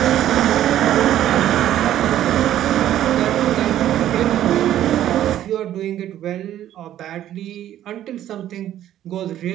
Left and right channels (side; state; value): left; quieter; 12.1 dB